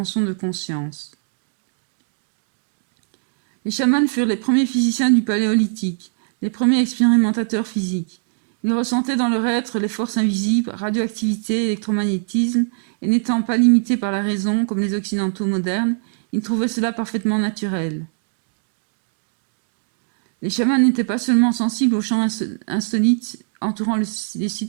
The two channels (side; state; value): left; silent; digital silence